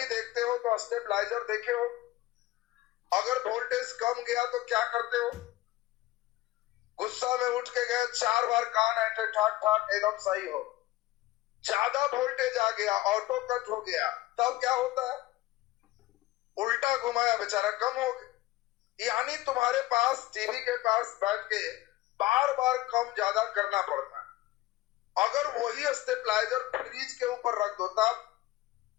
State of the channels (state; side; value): quieter; right; 16.8 dB